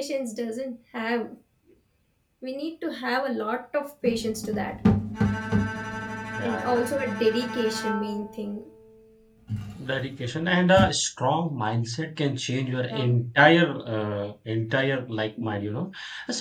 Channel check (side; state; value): both; identical; correlation 1.00